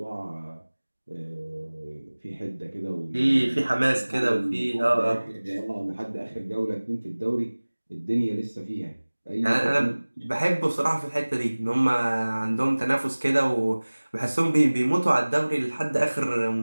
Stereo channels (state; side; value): inverted; both; correlation -1.00